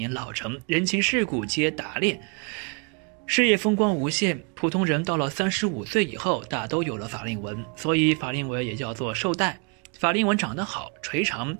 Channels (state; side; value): quieter; left; 35.2 dB